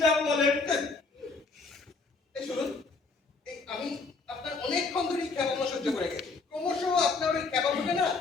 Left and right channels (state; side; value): quieter; right; 4.1 dB